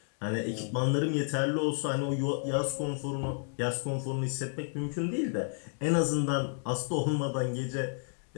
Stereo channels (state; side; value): silent; right; 57 dB below the other